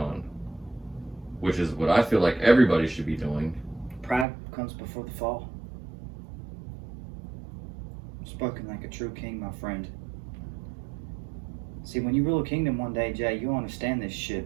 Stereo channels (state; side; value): drops out; left; at 4.2 s